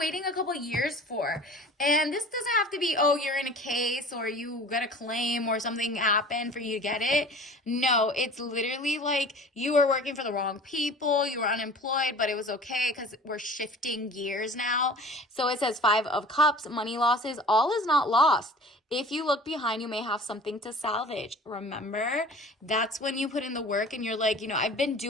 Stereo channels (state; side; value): normal; both; correlation 0.43